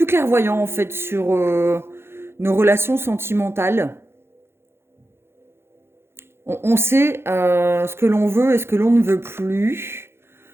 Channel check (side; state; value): left; late; 0.12 ms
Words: clairvoyant, en fait, sur nos relations sentimentales. On sait ce que l'on veut et ce que l'on ne veut plus.